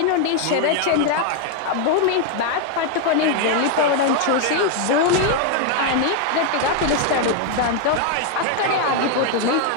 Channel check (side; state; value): both; different; correlation 0.00